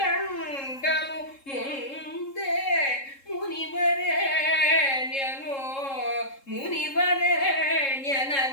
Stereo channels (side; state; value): right; late; 3.7 ms